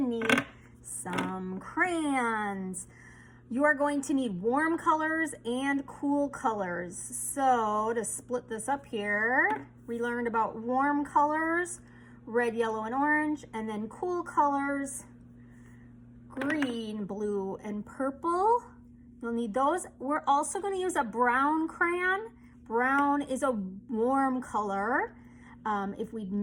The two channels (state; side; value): identical; both; correlation 1.00